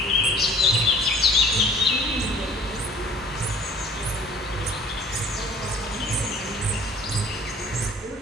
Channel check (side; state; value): both; normal; correlation 0.52